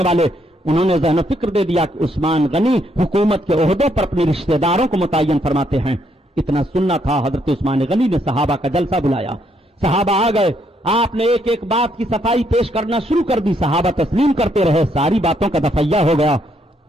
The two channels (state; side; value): normal; both; correlation 0.73